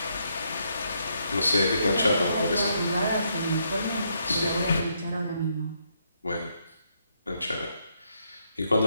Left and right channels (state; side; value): inverted; both; correlation -0.76